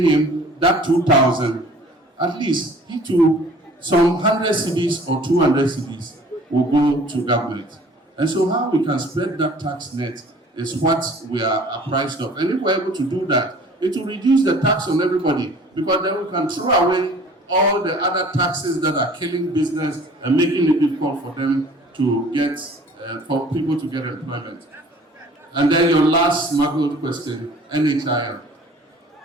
that 2,000, at least he too, some 100 cedis or 200 cedis will go to government. And so how we can spread that tax net is what we are apprised of. And if we're able to do that, it will reduce the tax on everybody, because then we can throw away all the other taxes that are killing business and making it difficult for them to get, for people to get employment. And then your last smuggled question, NHIL.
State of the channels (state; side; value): normal; both; correlation 0.49